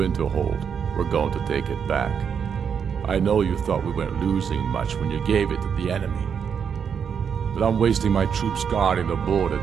We're going to take it back. I know you thought we weren't losing much when you gave it to the enemy. But I'm wasting my troops guarding the border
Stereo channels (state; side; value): quieter; left; 7.2 dB